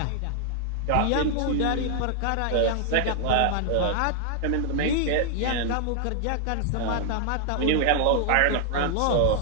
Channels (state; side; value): different; both; correlation 0.00